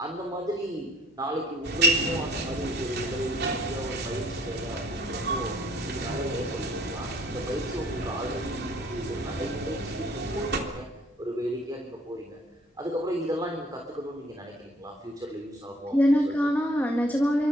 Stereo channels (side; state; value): both; normal; correlation 0.57